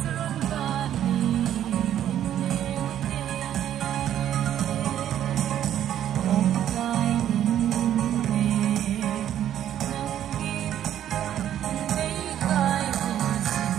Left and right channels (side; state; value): left; quieter; 10.9 dB